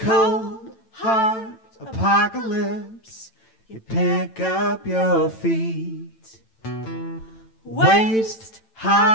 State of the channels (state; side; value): late; right; 9.0 ms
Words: hard apocalypse. You pick up your feet. Waist